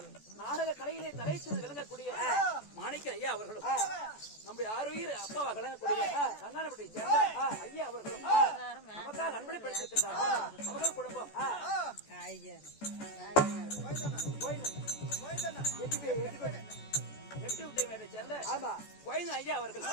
நாடக கலையிலே தலைச்சு விளங்கக்கூடிய மாணிக்க ஐயா அவர்களும் நம்முடைய ஆரோக்கிய அப்பாவா விளங்கக்கூடிய சங்கானப்பட்டியை சேர்ந்த ஐயா அவர்களும் நமக்காக அன்பளிப்படுத்திருக்கின்றார்கள். அவர்கள் குடும்பம் சேர்ந்த ஐயா அவர்கள்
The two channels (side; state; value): right; late; 14 ms